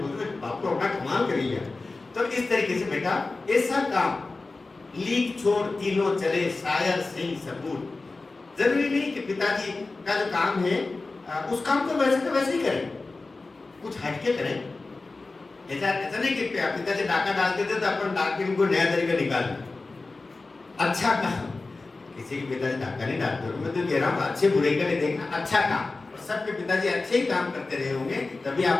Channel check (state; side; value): quieter; right; 3.5 dB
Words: बोलते हैं बापू अपना कमाल कर गया। तो इस तरीके से बेटा ऐसा काम लीक छोड़ तीनों चले, शायर सिंह सबूत। जरूरी नहीं कि पिताजी का जो काम है उस काम को वैसे ही करें, कुछ हटके करें। ऐसा नहीं कि पिताजी डाका डालते थे तो अपन डाक के उनको नया तरीका निकालना। अच्छा काम, किसी के पिताजी डाका नहीं डालते, मैं तो कह रहा हूँ अच्छे बुरे का नहीं देखना, अच्छा काम। और सबके पिताजी अच्छे ही काम करते रहे होंगे, तभी